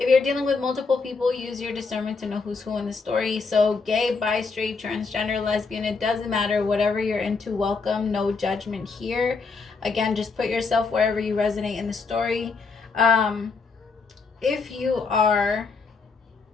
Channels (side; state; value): right; quieter; 4.6 dB